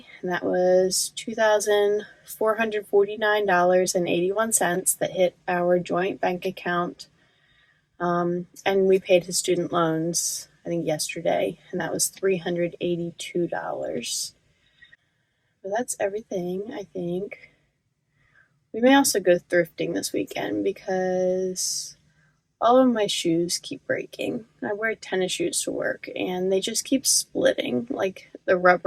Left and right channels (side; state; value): both; identical; correlation 1.00